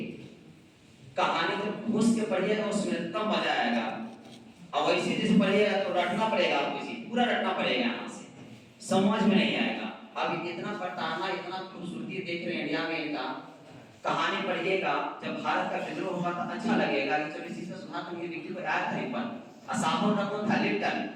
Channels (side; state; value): both; identical; correlation 1.00